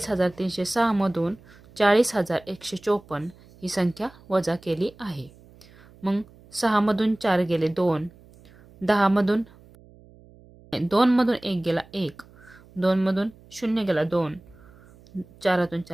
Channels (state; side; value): noise; right; hum, 25 dB below the sound